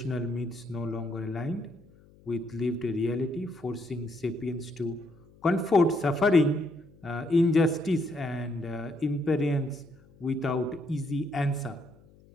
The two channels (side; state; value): left; noise; hum, 26 dB below the sound